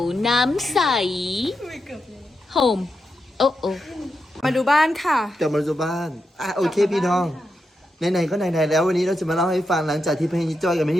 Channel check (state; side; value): normal; both; correlation 0.86